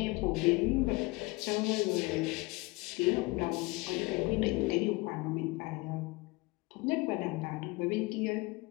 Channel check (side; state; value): right; quieter; 23.5 dB